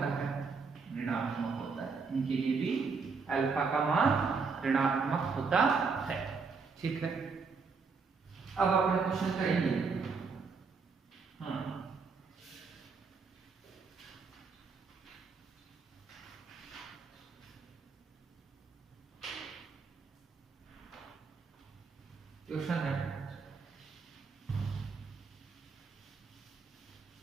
है? ऋणात्मक होता है। इनके लिए भी अल्फा का मान ऋणात्मक होता है, ठीक है। अब अपने क्वेश्चन करेंगे। क्वेश्चन है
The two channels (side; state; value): left; quieter; 4.9 dB